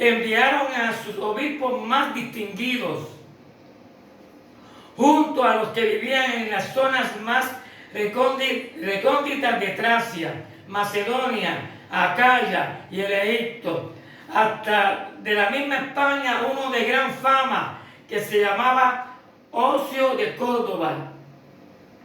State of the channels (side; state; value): both; identical; correlation 1.00